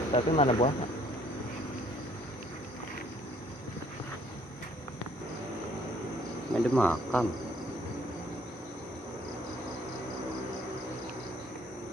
Tapi mana buahnya? Ini ada makam.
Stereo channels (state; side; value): normal; both; correlation 0.62